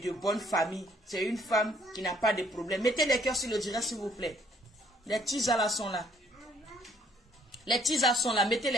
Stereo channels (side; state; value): both; normal; correlation 0.63